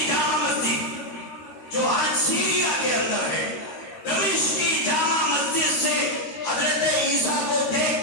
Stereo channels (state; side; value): late; right; 13 ms